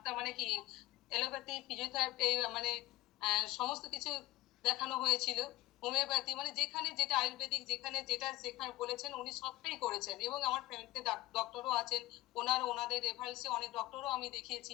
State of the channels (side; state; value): right; quieter; 18.3 dB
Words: মানে কি এলোপ্যাথি ফিজিওথেরাপি মানে সমস্ত কিছু দেখানো হয়েছিল, হোমিওপ্যাথি মানে যেখানে যেটা আয়ুর্বেদিক যেখানে যেটা যেখানে বলেছেন উনি সবটাই করেছেন। এবং আমার ফ্যামিলিতে ডক্টরও আছেন, ওনাদের রেফারেন্সে অনেক ডক্টরও আমি